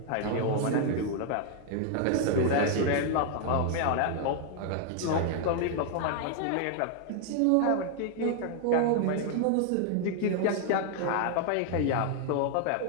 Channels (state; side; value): different; both; correlation 0.00